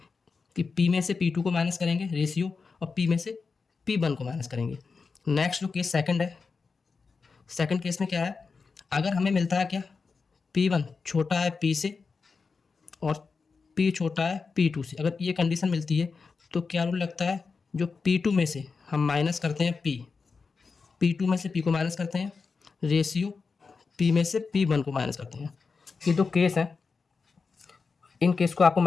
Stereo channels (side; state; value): right; quieter; 4.8 dB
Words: कि P में से P2 को माइनस करेंगे रेशियो और P में से P1 को माइनस करेंगे। नेक्स्ट जो केस सेकंड है, सेकंड केस में क्या है, अगर हमें मिलता है क्या, P1 छोटा है P से और P छोटा है P2 से। अगर ये कंडीशन मिलती है तो क्या रूल लगता है, जो P2 में से हम माइनस करते हैं P2 में से P को माइनस करते हैं रेशियो P में से P1 को माइनस करते हैं। ये दो केस हैं, इन केस को आपको